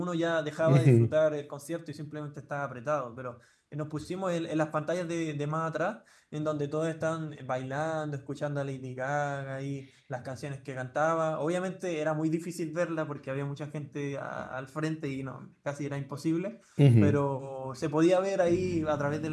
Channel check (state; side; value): identical; both; correlation 1.00